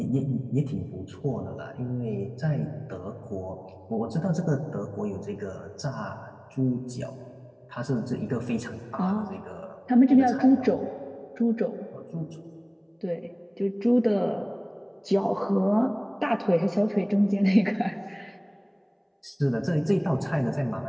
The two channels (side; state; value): both; identical; correlation 1.00